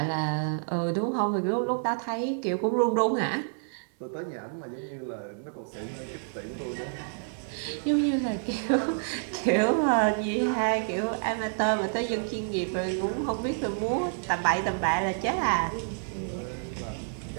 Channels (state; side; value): silent; left; 56 dB below the other